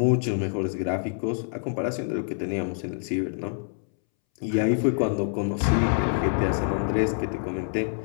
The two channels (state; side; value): silent; right; 61 dB below the other